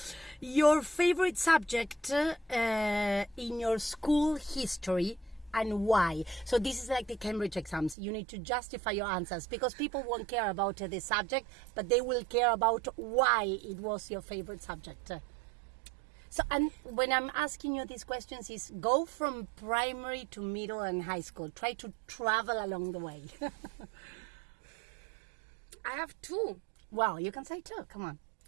Your favorite subject in your school history and why? So this is like the Cambridge exams. You need to justify your answers because people won't care about the subject, but they will care about why it was your favorite subject. So, and when I'm asking you these questions is go from primary to middle and high school. Try to travel along the way. I have two. Well, you can say two. Come on.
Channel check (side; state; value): left; drops out; at 8.0 s